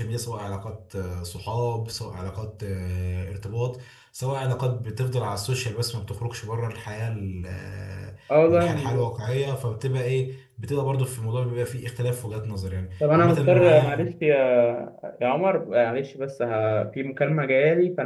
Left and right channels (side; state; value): both; identical; correlation 1.00